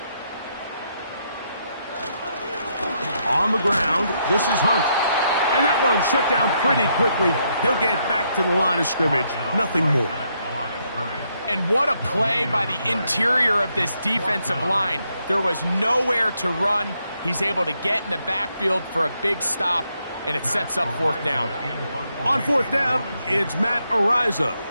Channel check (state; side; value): inverted; both; correlation -0.77